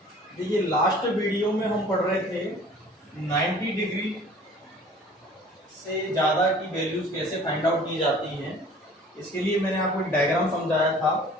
देखिए last video में हम पढ़ रहे थे 90 डिग्री से ज़्यादा की वैल्यूज कैसे फाइंड आउट की जाती हैं। इसके लिए मैंने आपको एक डायग्राम समझाया था।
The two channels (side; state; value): both; normal; correlation 0.49